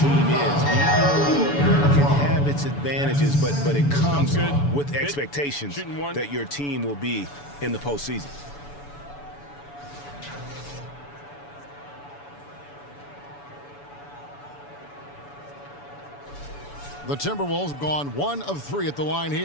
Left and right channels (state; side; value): late; right; 7.0 ms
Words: is. It can have its advantages, but it comes with expectations that your team will be in the postseason. The Timberwolves have gone 1 of 3 at the line